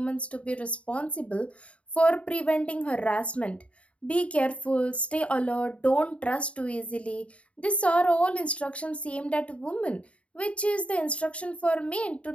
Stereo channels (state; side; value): late; right; 0.063 ms